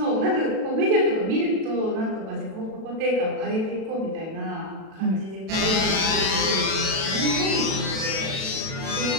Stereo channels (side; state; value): left; late; 37 ms